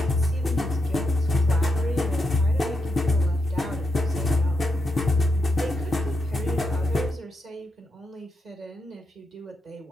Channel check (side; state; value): both; normal; correlation 0.84